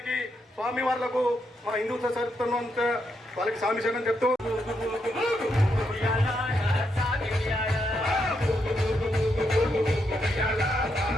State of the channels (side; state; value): both; normal; correlation 0.80